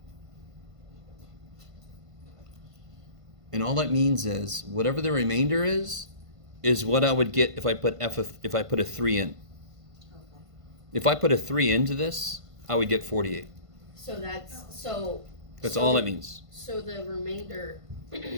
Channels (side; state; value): left; late; 1.5 ms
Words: And all that means is whatever the remainder is what I would get if I put a 3 in. Okay. If I put a 3 into this, I would get 48. So that's That's all that means. So the remainder